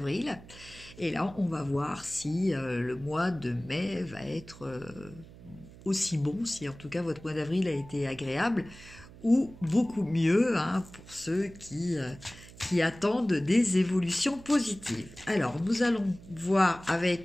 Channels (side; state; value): right; noise; hum, 19 dB below the sound